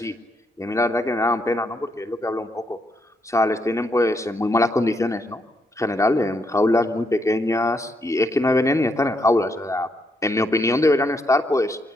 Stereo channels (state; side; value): normal; both; correlation 0.77